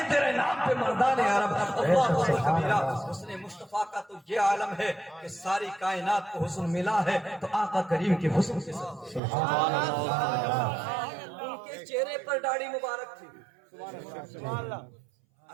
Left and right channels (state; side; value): drops out; left; at 9.2 s